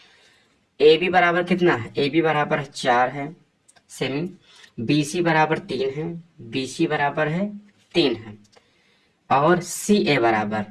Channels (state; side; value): identical; both; correlation 1.00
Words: ए बी बराबर कितना है, ए बी बराबर 4 है सेमी, बी सी बराबर 3 है, बी सी बराबर है 3 है, और सी ए